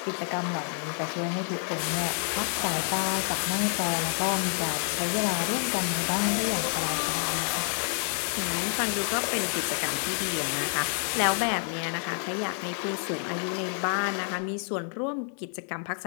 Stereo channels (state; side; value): silent; right; 56 dB below the other